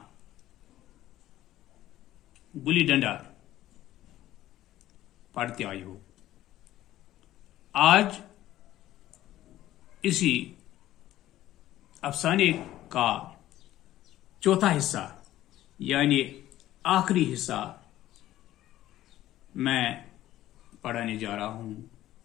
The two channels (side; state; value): right; quieter; 14.1 dB